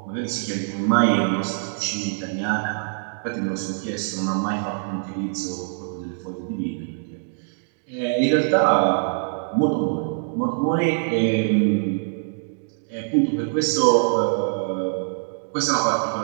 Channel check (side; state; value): left; silent; digital silence